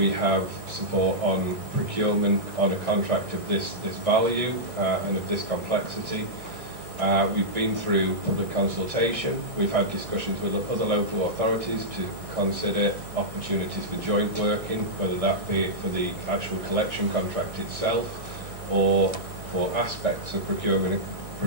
have support on procurement on a contract of this value and of this complexity. We've been through public consultation. We've had discussions with other local authorities to consider opportunities for joint working, whether that be for the actual collection contract itself or for aspects of procuring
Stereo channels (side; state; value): left; late; 1.6 ms